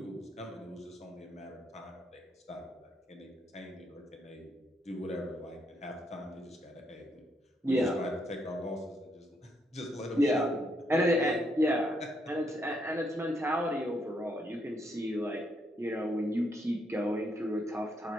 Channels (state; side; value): normal; both; correlation 0.76